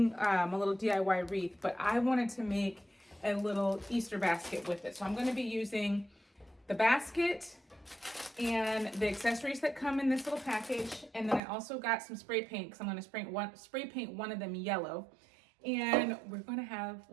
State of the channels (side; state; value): left; drops out; at 11.4 s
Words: a little DIY wreath, but I wanted to make a little Easter basket with it. So I'm going to be using the basket and the accessories that come in this little package, and then I also got some spray paint because I'm going to spray paint one of them yellow. And we're going to have,